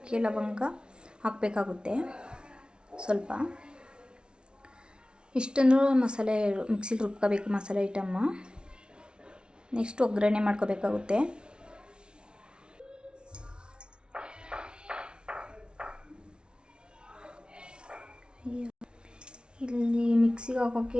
ಲವಂಗ ಹಾಕಬೇಕಾಗುತ್ತೆ ಸ್ವಲ್ಪ. ಇಷ್ಟನ್ನು ಮಸಾಲೆ ಮಿಕ್ಸಿಲಿ ರುಬ್ಕೋಬೇಕು ಮಸಾಲೆ ಐಟಮ್ಮ. ನೆಕ್ಸ್ಟ್ ಒಗ್ಗರಣೆ ಮಾಡ್ಕೋಬೇಕಾಗುತ್ತೆ. ಇಲ್ಲಿ ಮಿಕ್ಸಿಗೆ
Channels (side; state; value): left; late; 0.056 ms